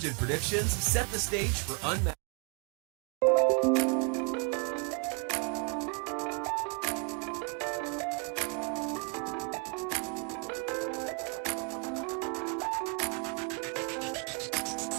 and predictions set the stage for unmatched.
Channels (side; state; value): left; quieter; 35.6 dB